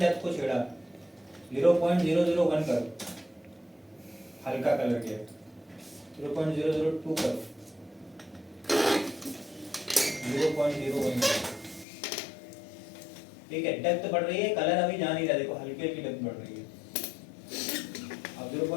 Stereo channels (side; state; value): right; drops out; at 11.9 s